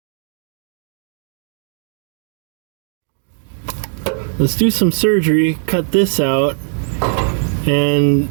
Let's do some surgery, cut this out, and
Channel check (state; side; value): silent; left; digital silence